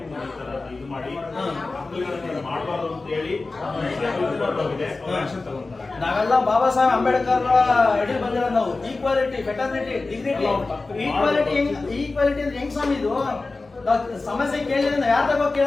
ಇದು ಮಾಡಿ ಮಾಡಬಾರ್ದು ಅಂತ ಹೇಳಿ ಆಕ್ಷನ್ ತಗೊಂತಾರೆ. ನಾವೆಲ್ಲ ಬಾಬಾ ಸಾಹೇಬ್ ಅಂಬೇಡ್ಕರ್ ಅಡಿ ಬಂದಿರೋದು ನಾವು. Equality, fraternity, dignity. ಈಕ್ವಾಲಿಟಿ ಅಂದ್ರೆ ಹೆಂಗ್ ಸ್ವಾಮಿ ಇದು? ನಾವ್ ಸಮಸ್ಯೆ ಕೇಳಿದ್ರೆ ನಾವ್ ಯಾರ ತಗೋ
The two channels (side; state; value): right; quieter; 3.6 dB